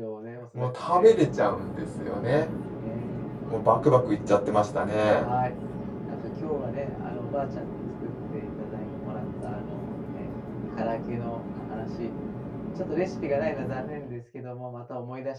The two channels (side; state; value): both; identical; correlation 1.00